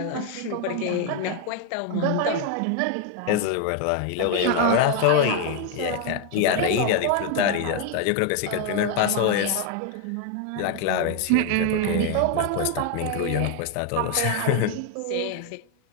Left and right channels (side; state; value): both; different; correlation 0.01